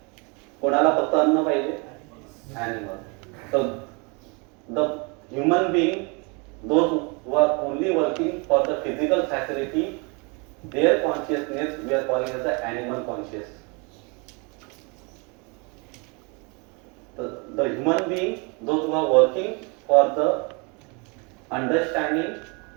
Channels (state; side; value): quieter; left; 31.3 dB